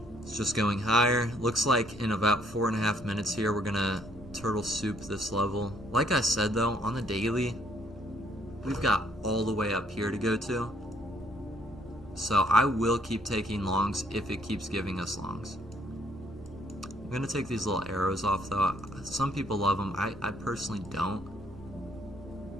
It's just going higher. Looks like in about 4.5 minutes here, we're going to turtle soup this level. Like I said though, on the daily, we've got all the way up here to go to. So I will keep taking longs if it keeps giving us longs. I'm going to take these little arrows off though. Some people love them. I personally don't.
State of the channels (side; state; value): both; normal; correlation 0.65